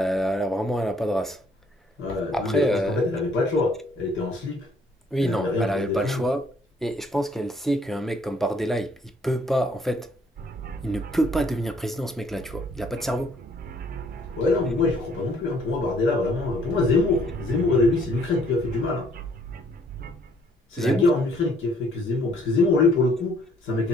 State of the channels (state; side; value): normal; both; correlation 0.63